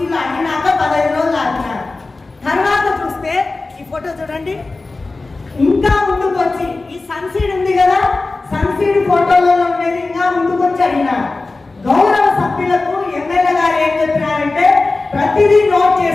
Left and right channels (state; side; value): quieter; right; 3.5 dB